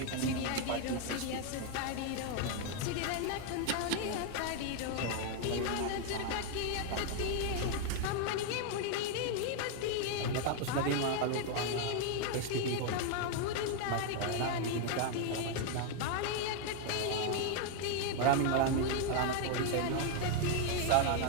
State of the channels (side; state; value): both; different; correlation 0.00